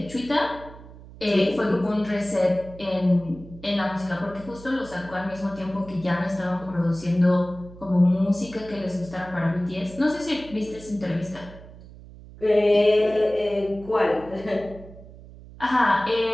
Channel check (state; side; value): noise; right; hum, 18 dB below the sound